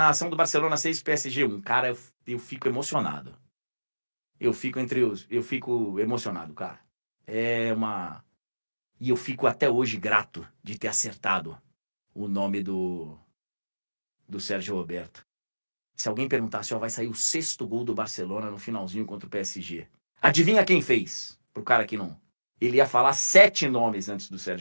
do Barcelona 6 PSG 1? Cara, eu fico emocionado. Eu fico emocionado, cara. E eu fico até hoje grato de ter acertado o nome do Sérgio Roberto. Se alguém perguntasse, vai sair o 6º gol do Barcelona no finalzinho contra o PSG. Adivinha quem fez? Pro cara que não... Ele ia falar 7 nomes antes do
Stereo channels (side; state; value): both; inverted; correlation -1.00